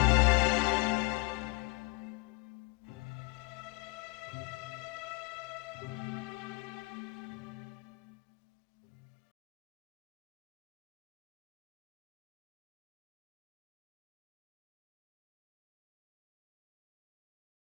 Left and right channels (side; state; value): right; quieter; 25.8 dB